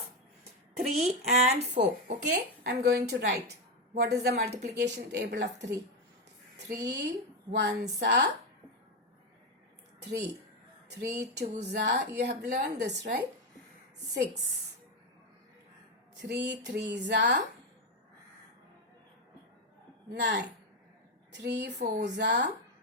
3 and 4. Okay. I am going to write. What is the multiplication table of 3? 3 ones are 3. 3 twos are, you have learned this, right? 6. 3 threes are 9. 3 fours are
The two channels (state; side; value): normal; both; correlation 0.09